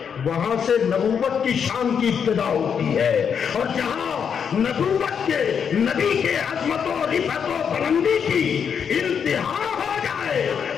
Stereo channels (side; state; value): right; quieter; 7.2 dB